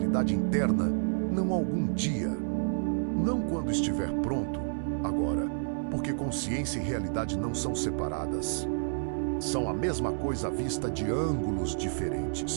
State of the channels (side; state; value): left; silent; 58 dB below the other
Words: interna, não algum dia. Não quando estiver pronto, agora, porque consciência e realidade não são separadas. São a mesma coisa vista de ângulos